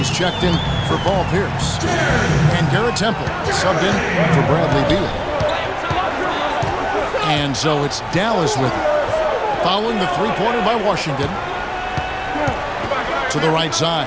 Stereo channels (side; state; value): both; identical; correlation 1.00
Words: checked in for Paul Pierce. And Garrett Temple subbed in for Bradley Beal. And so it's Dallas with it. Following the three-pointer by Washington. To the right side.